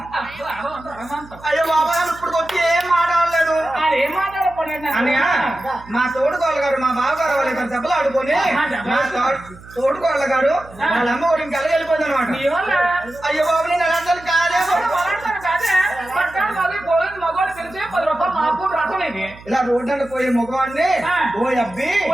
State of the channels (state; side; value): noise; right; hum, 20 dB below the sound